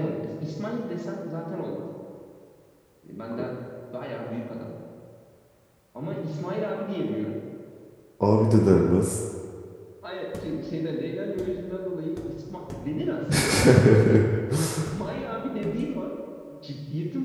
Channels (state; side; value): identical; both; correlation 1.00